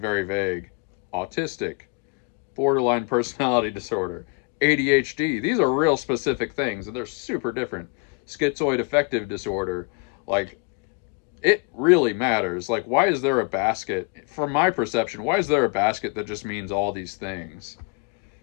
vague. Autistic, borderline personality disorder, ADHD. These are real specific things, and they're super different. Schizoid affective disorder, like, it really matters. Like, why is there a basket? From my perception, why is there a basket that just means all these things?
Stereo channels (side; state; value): right; quieter; 32.4 dB